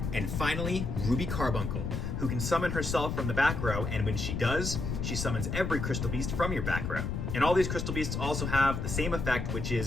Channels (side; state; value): left; noise; rumble, 3 dB below the sound